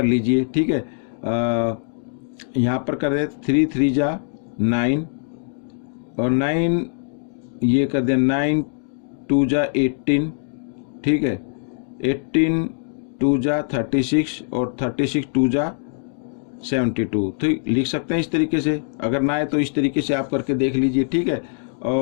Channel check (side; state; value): right; silent; digital silence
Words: लीजिए। ठीक है, यहाँ पर कर दे 3 3 जा 9 और 9 ये कर दे 9 2 जा 18। ठीक है, 18 2 जा 36 और 36 2 जा 72। तो लिख सकते हैं इस तरीके से, अगर ना आए तो इस तरीके से आप करके देख लीजिए। ठीक है,